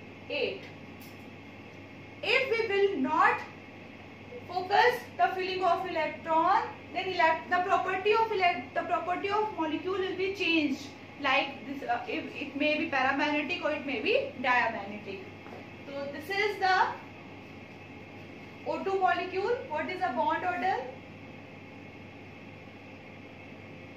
8. If we will not focus the filling of electron, then the property of molecule will be changed. Like this, it may be paramagnetic or it may be diamagnetic. So this is the O2 molecule. What is the bond order?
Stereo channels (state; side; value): identical; both; correlation 1.00